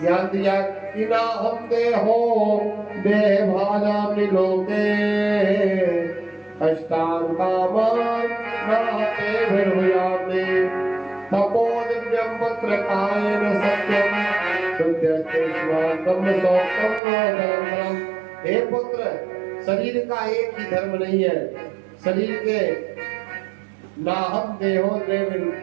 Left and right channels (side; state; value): left; drops out; at 17.0 s